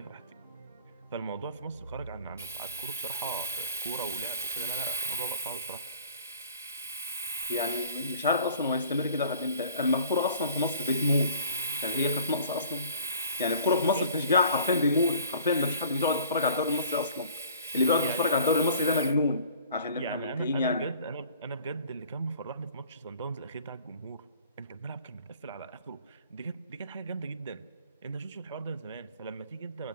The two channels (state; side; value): inverted; both; correlation -0.51